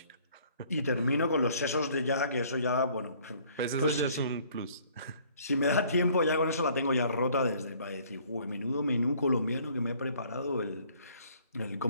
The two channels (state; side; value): inverted; both; correlation -0.58